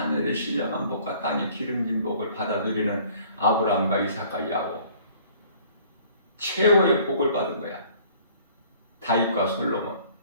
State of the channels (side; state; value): both; inverted; correlation -0.54